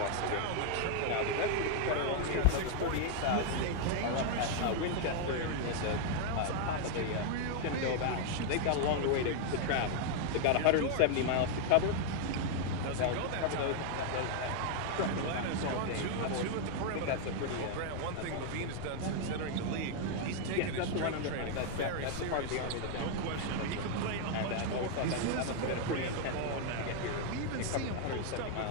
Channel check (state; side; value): different; both; correlation 0.00